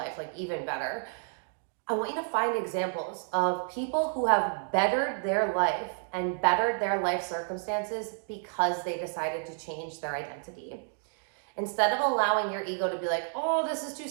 like even better, I want you to find examples of people who have bettered their life and bettered their life circumstances because they decided to change their identity. Instead of allowing your ego to be like, oh, this is too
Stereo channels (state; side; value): silent; left; digital silence